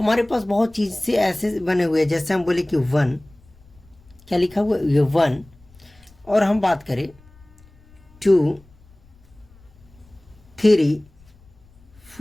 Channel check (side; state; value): left; noise; rumble, 28 dB below the sound